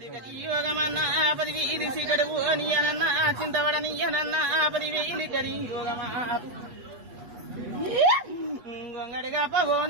యోగమన్నా 10,000 సిగడు నీయనన్నా చింతవడనీయనన్నా 10,000 కరి యోగమా గొంగడిగా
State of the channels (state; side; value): late; left; 8.2 ms